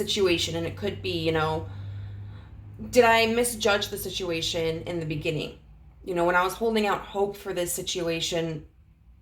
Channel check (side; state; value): both; identical; correlation 1.00